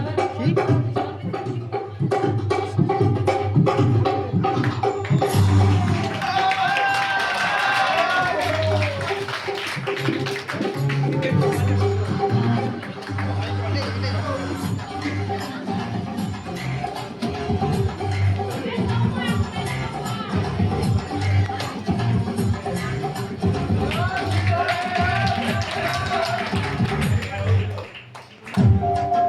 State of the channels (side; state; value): both; identical; correlation 1.00